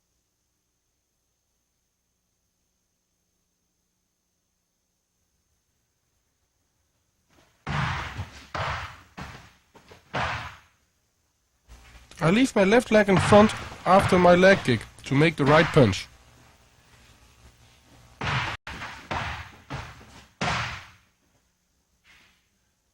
I leave my left leg in front after my leg kick to make the right punch.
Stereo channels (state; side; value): identical; both; correlation 1.00